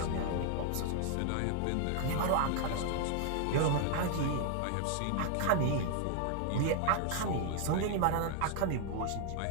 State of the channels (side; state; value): both; different; correlation 0.00